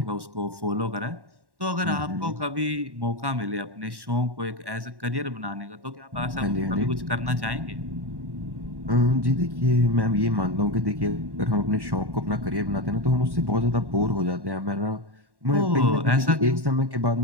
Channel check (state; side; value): late; left; 1.1 ms